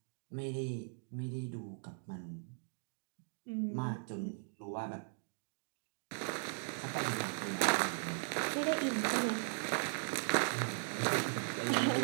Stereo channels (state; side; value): silent; left; 52 dB below the other